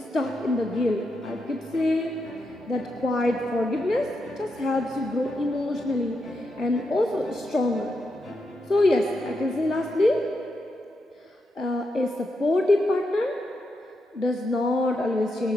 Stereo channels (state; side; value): normal; both; correlation 0.84